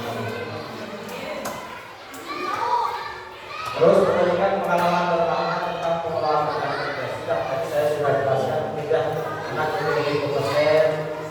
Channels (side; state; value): both; identical; correlation 1.00